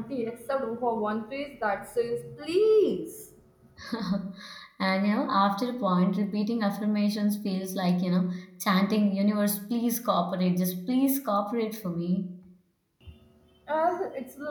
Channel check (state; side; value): identical; both; correlation 1.00